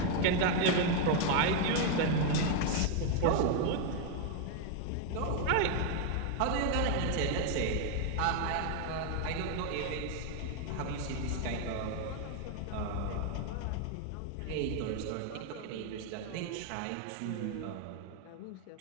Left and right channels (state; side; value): different; both; correlation 0.01